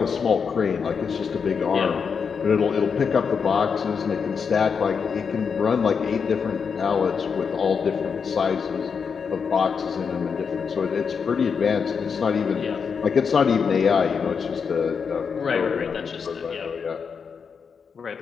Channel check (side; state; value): right; quieter; 6.1 dB